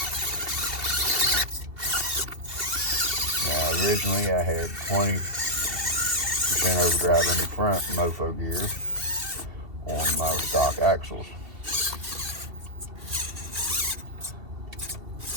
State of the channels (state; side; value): late; left; 2.7 ms